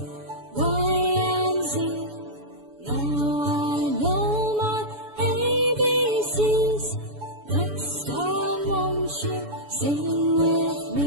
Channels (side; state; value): left; late; 7.0 ms